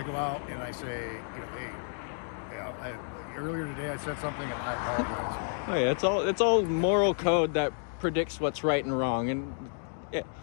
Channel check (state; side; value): silent; right; 57 dB below the other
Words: go out and I say, hey, earlier today I said something and I apologize. Oh yeah, it's all moral code that predicts what's right and wrong, and yeah.